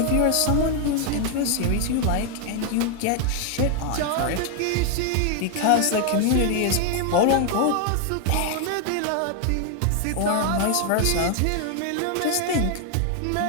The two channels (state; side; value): different; both; correlation 0.00